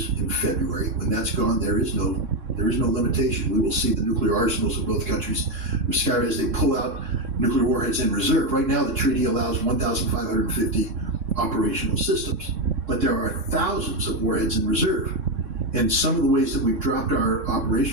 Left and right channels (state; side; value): late; left; 3.6 ms